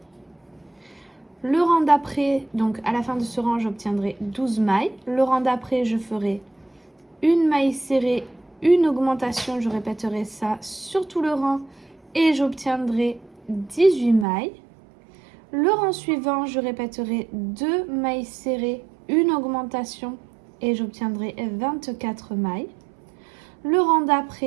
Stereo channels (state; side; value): drops out; left; at 14.2 s